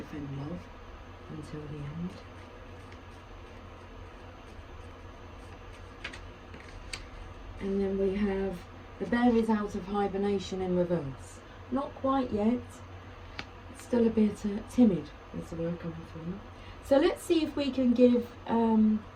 love until the end. And then we have the bear is out of hibernation in reverse. Not quite yet. Still a bit timid is the word coming through. So let's see if we can give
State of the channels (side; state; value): both; identical; correlation 1.00